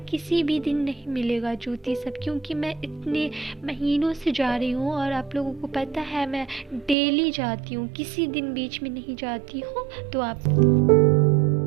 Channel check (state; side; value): drops out; left; at 7.0 s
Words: किसी भी दिन नहीं मिलेगा जूती सब, क्योंकि मैं इतने महीनों से जा रही हूँ और आप लोगों को पता है मैं डेली जाती हूँ, किसी दिन बीच में नहीं जाती हूँ। तो आप